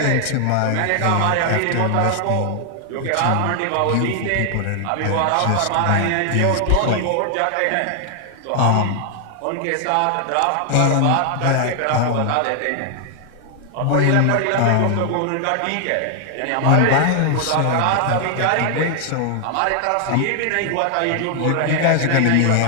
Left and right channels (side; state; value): both; different; correlation 0.00